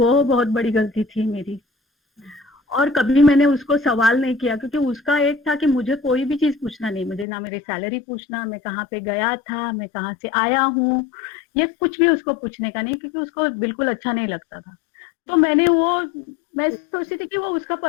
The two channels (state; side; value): drops out; right; at 7.2 s